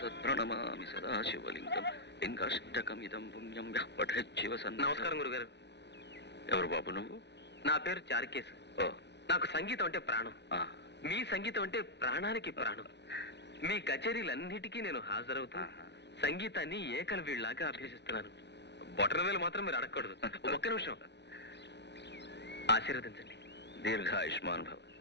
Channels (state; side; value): late; right; 0.50 ms